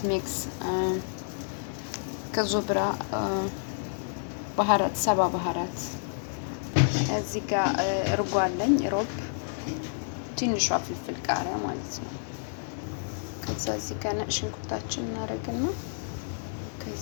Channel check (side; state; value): right; silent; digital silence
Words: ሚክስ ከዞብራ ባህራት፣ ሰባ ባህራት። እዚህ ጋር እርጎ አለኝ፣ ሮብ፣ ትንሿ ፍልፍል ቃሪያ ማለት ነው። ከዛ እዚህ ጋር ነጭ ሽንኩርታችን እናደርግና